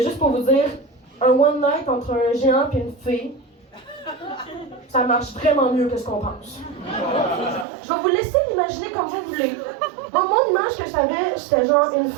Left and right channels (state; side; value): drops out; left; at 7.7 s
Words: juste pour vous dire, un one night entre un géant et une fée, ça marche vraiment mieux que ce qu'on pense. Je vais vous laisser l'imaginer comme vous voulez. Moi, mon image que j'avais, c'était genre une